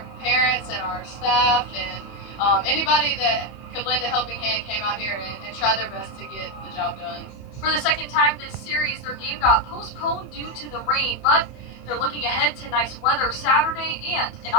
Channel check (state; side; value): late; right; 30 ms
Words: parents and our staff and anybody that could lend a helping hand came out here and tried their best to get the job done. For the second time this series, their game got postponed due to the rain, but they're looking ahead to nice weather Saturday and an